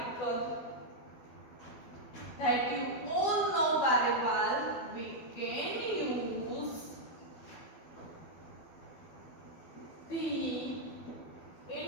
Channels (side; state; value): right; late; 12 ms